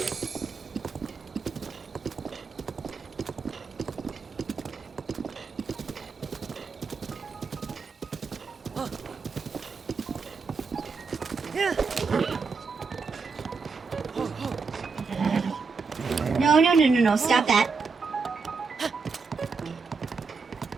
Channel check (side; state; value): left; quieter; 4.8 dB